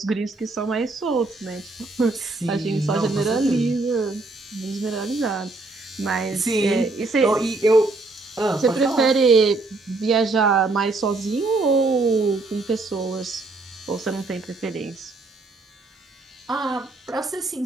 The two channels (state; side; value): quieter; left; 3.3 dB